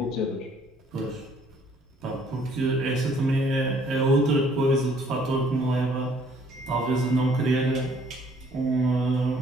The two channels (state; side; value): normal; both; correlation 0.61